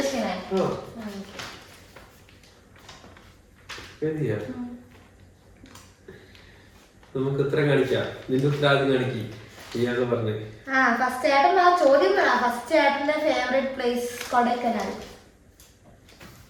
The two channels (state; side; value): identical; both; correlation 1.00